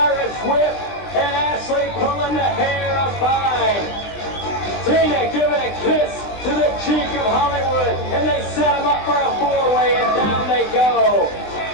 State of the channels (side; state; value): right; late; 20 ms